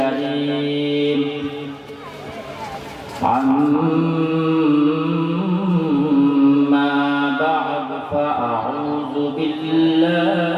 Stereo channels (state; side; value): identical; both; correlation 1.00